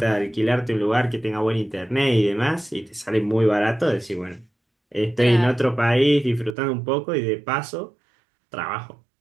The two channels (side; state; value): left; drops out; at 6.6 s